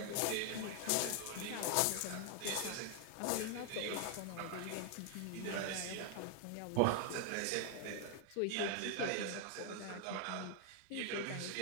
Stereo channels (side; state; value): both; different; correlation 0.00